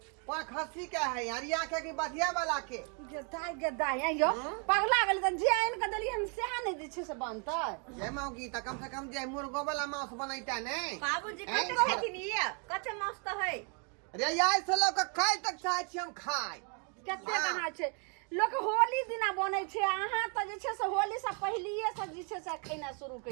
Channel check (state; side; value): quieter; left; 38.4 dB